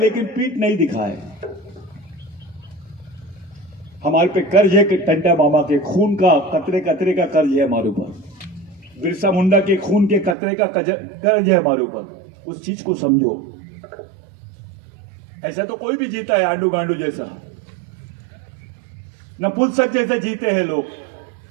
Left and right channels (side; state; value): left; drops out; at 10.4 s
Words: पीठ नहीं दिखाए। हमारे पे कर्ज है कि टंटा मामा के खून का कतरे कतरे का कर्ज है हमारे ऊपर, बिरसा मुंडा के खून के कतरे का कर्ज है हमारे ऊपर। उस चीज को समझो। ऐसा तो कोई भी जीता है आंडू गांडू जैसा, नपुंसक जैसे जीते हैं लोग।